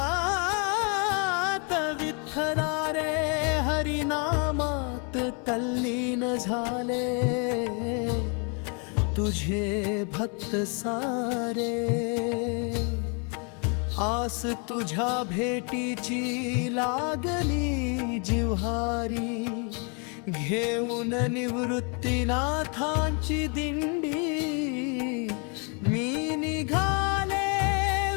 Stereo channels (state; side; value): quieter; right; 36.2 dB